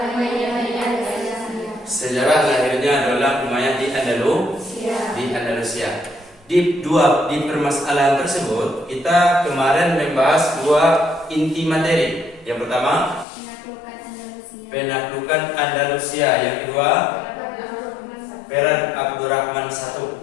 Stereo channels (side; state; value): right; drops out; at 13.2 s